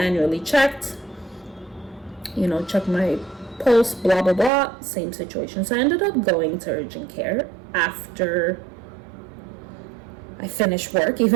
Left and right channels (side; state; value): left; drops out; at 4.5 s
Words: checked, you know, checked my pulse, blah, blah, blah, same situation. So I ended up going to urgent care after I finished work,